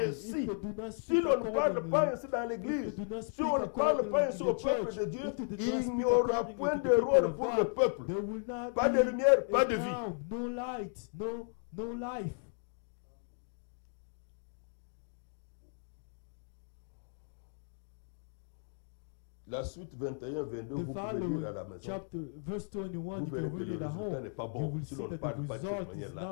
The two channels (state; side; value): silent; right; 54 dB below the other